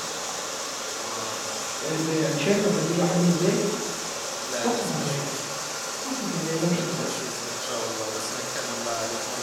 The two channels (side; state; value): both; identical; correlation 1.00